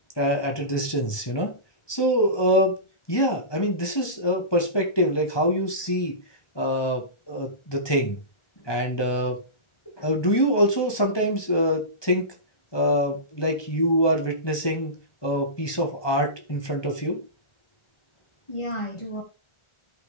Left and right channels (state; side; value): late; right; 1.2 ms